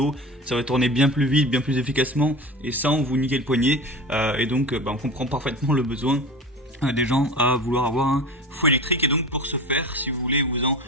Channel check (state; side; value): normal; both; correlation 0.31